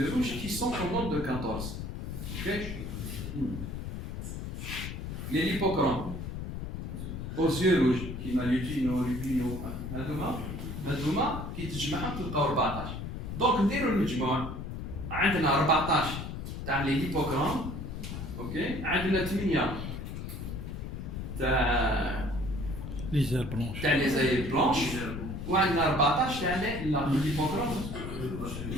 rouges qui sont au nombre de 14 ok les l'hippocrone aux yeux rouges كيما لوبينو هذوما كي تجمعهم تلقاو 14 دونك نديروا المجموع عندنا 14 تاع لي ليبوكرون اوكي عندنا 8 تاع لي زير بلونش تاع لي زاير بلونش وعندنا 14 تاع لي ليبوكرون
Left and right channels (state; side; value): noise; left; rumble, 6 dB below the sound